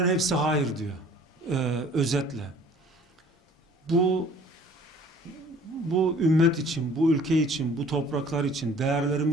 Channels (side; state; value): both; normal; correlation 0.52